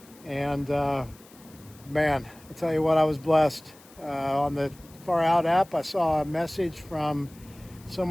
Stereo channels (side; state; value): left; noise; hiss, 24 dB below the sound